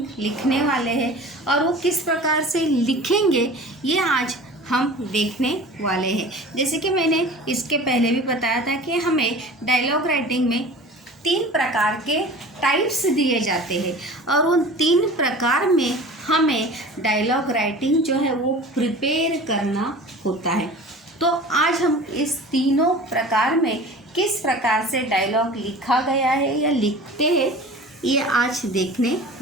लिखने वाले हैं और वो किस प्रकार से लिखेंगे ये आज हम देखने वाले हैं। जैसे कि मैंने इसके पहले भी बताया था कि हमें डायलॉग राइटिंग में 3 प्रकार के टाइप्स दिए जाते हैं और उन 3 प्रकार में हमें डायलॉग राइटिंग जो है वो प्रिपेयर करना होता है। तो आज हम इस तीनों प्रकार में किस प्रकार से डायलॉग लिखा गया है या लिखते हैं ये आज देखने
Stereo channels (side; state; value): both; normal; correlation 0.40